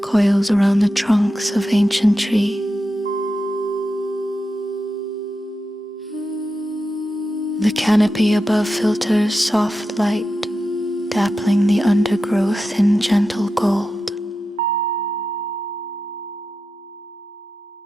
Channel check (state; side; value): normal; both; correlation 0.90